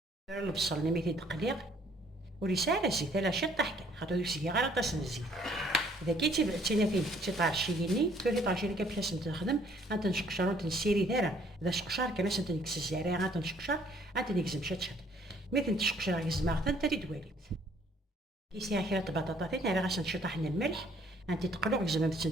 فيرا البصل نميتي تقليق ورسالة الزيت على شي طحكة خاطر يسقي غير طاس الزيت. إذا كنتي بعتينا فين شي طارشيني تولي طارشيني كيفاش نخدم غنتنشقشر ونتنسيري دايرة إذا شقشر كناش نتنكس الزريعة غنتنشقشر غنتنكزم شات ميت تشقشر يزمع حتى تدواليت كيسيها كيرا البطاطا راه غاش نشطح من الملح انت تقلق زعما باش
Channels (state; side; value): normal; both; correlation 0.61